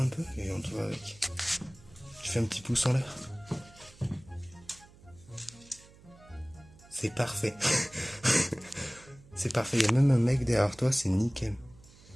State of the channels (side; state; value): right; noise; hum, 24 dB below the sound